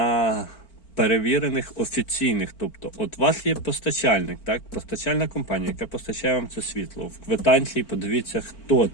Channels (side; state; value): right; late; 4.4 ms